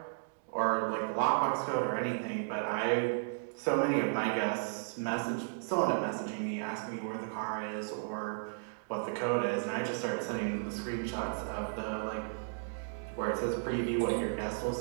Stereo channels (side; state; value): left; silent; digital silence